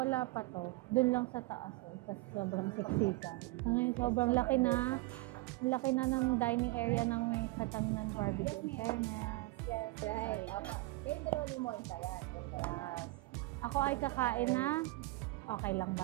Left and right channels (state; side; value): quieter; left; 21.2 dB